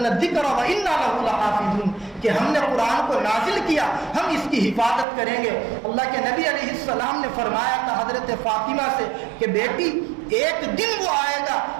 الذکر وانا له لحافظون, کہ ہم نے قرآن کو نازل کیا, ہم اس کی حفاظت کریں گے. اللہ کے نبی علیہ السلام نے فرمایا تھا حضرت فاطمہ سے کہ بیٹی ایک دن وہ آئے گا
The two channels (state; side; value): drops out; left; at 5.1 s